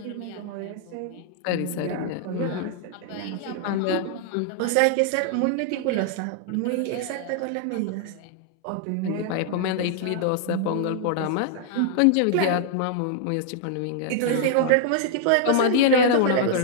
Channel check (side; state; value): both; different; correlation -0.01